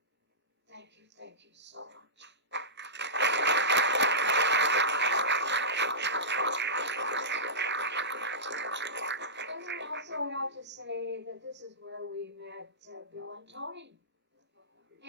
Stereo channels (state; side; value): normal; both; correlation -0.16